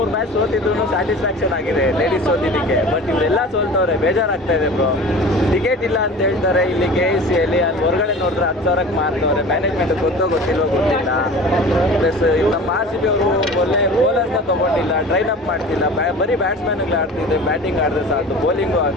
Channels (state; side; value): normal; both; correlation 0.39